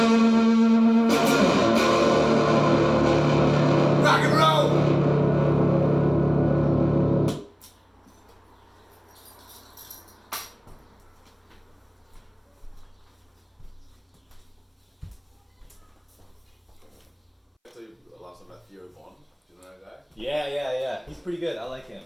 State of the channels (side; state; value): both; identical; correlation 1.00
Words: and roll! Yeah. He's pretty good. I like him.